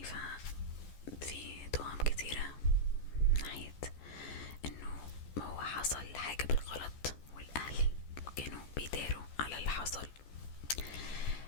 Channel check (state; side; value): late; right; 14 ms